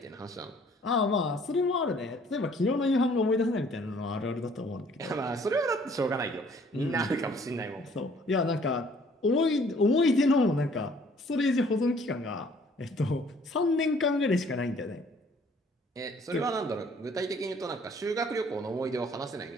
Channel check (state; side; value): normal; both; correlation 0.58